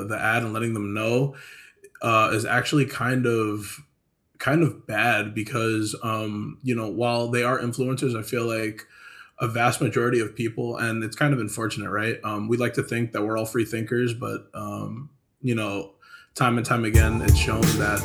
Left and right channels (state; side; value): identical; both; correlation 1.00